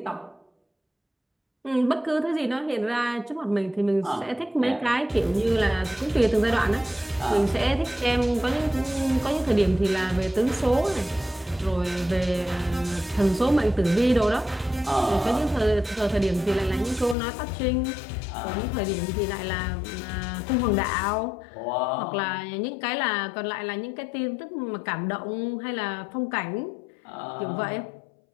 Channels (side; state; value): right; drops out; at 17.2 s